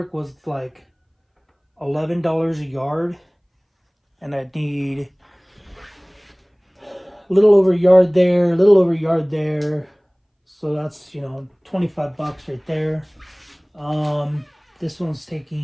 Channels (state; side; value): identical; both; correlation 1.00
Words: was like $11 a yard, and I'd need a little over a yard there, a little over a yard there. So that's, 25 bucks right there. This one's